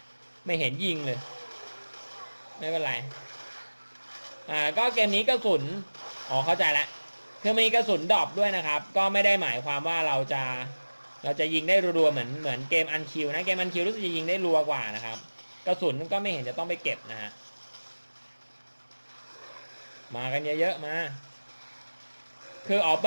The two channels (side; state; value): both; inverted; correlation -1.00